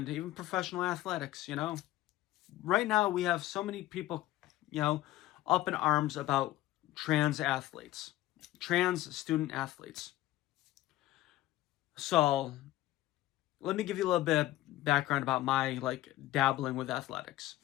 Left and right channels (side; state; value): right; quieter; 15.9 dB